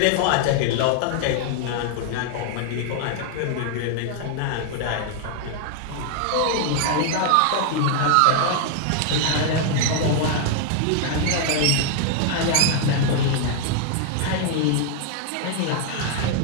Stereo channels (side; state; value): both; different; correlation 0.00